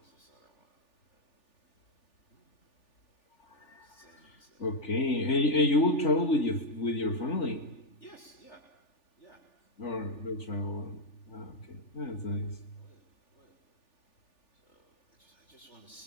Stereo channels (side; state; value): right; late; 3.4 ms